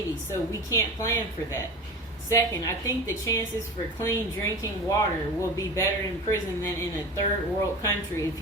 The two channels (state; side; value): normal; both; correlation 0.32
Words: so we can't plan for that. Second, I think the chances for clean drinking water will be better in prison than in a third world country if